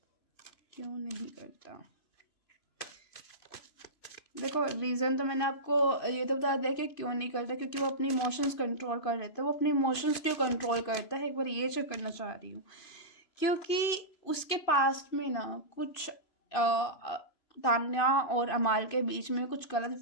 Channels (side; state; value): right; late; 2.5 ms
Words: क्यों नहीं करता? देखो रीज़न तो मैंने आपको ये तो बता दिया कि क्यों नहीं करता, क्योंकि वो अपने इमोशंस कंट्रोल कर लेता है। वो अपने इमोशंस क्यों कंट्रोल करता है, एक बार ये चेक करना चाह रही हूँ। क्योंकि उसके पास्ट में ना कुछ तान्या और अमाल के बीच में कुछ गलत